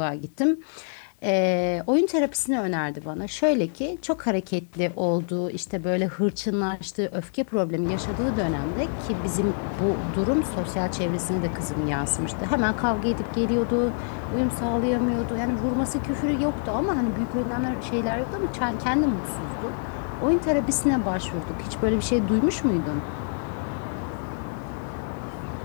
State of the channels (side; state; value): right; silent; 61 dB below the other